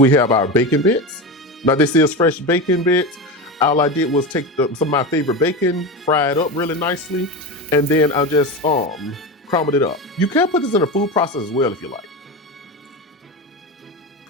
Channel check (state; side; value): normal; both; correlation 0.21